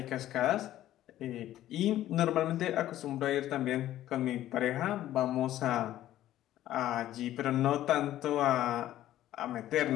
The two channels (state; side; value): quieter; right; 13.4 dB